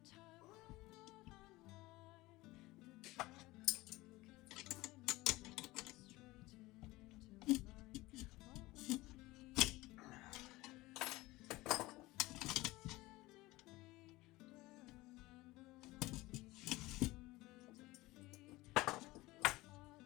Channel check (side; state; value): right; quieter; 19.8 dB